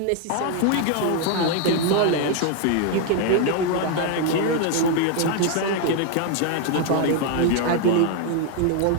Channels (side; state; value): both; different; correlation 0.00